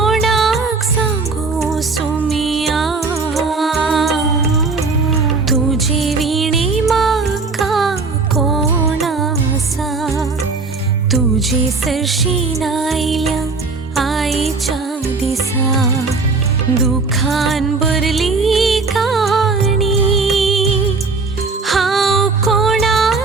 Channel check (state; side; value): quieter; left; 4.1 dB